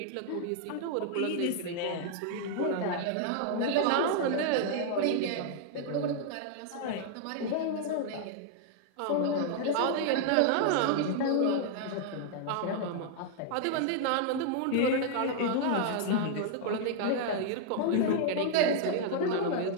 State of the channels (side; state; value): both; different; correlation -0.01